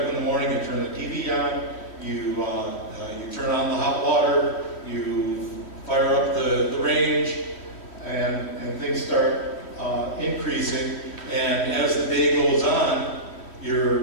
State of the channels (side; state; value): right; late; 3.1 ms